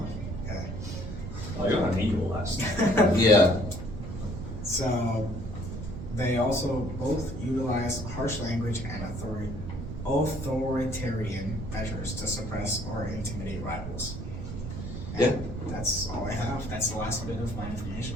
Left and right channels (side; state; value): right; noise; rumble, 7 dB below the sound